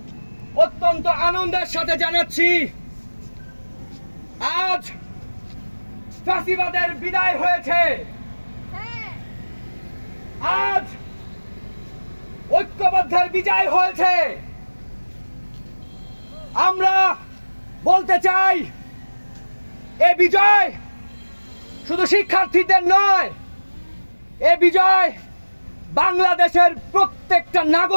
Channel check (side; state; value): both; inverted; correlation -1.00